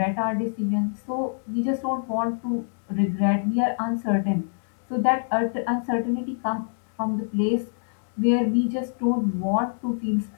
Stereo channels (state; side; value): silent; right; digital silence